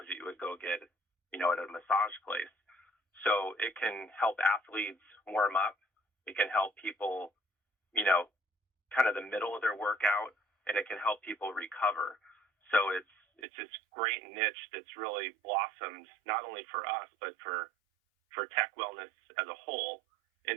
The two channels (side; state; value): left; drops out; at 13.4 s